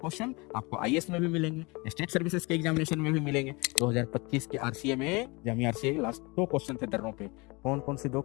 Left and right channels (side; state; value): right; quieter; 26.6 dB